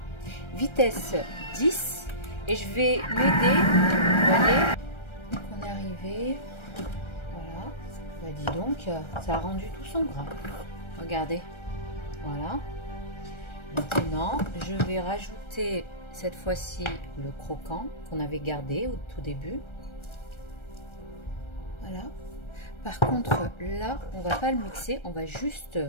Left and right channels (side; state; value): right; late; 1.3 ms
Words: Vitesse 10. Et je vais m'aider, vous voyez, on est arrivé, voilà, bah dis donc, ça a rendu tout son gras, regardez, voilà. Maintenant, je vais rajouter cette fois-ci le croquant qu'on avait gardé au tout début, voilà. Par contre, là, on va pas le mixer, on va juste,